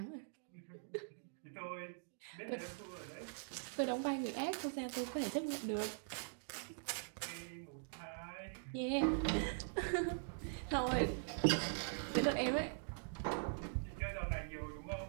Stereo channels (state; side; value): silent; left; digital silence